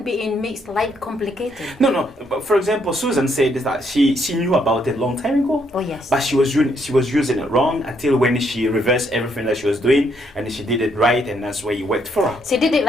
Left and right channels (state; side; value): normal; both; correlation 0.72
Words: being makes life complicated. No. But for example, Susan said that she knew about it a long time ago. Oh yes. But she was using it wrong until when she reversed everything that she was doing and she did it right, and that's where you worked for her. She did it